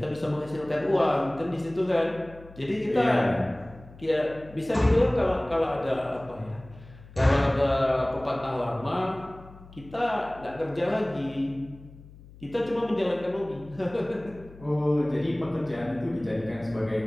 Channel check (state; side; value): noise; left; hum, 20 dB below the sound